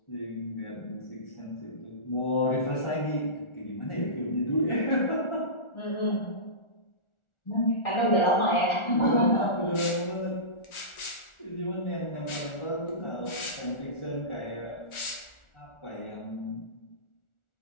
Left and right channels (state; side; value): late; right; 1.4 ms